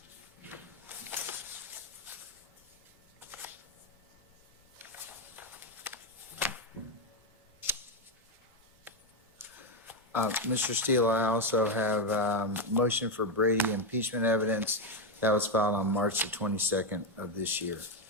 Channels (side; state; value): both; normal; correlation 0.05